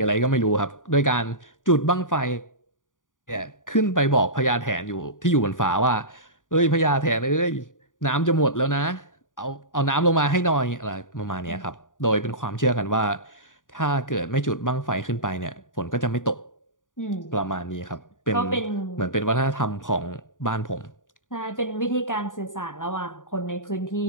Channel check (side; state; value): right; late; 0.88 ms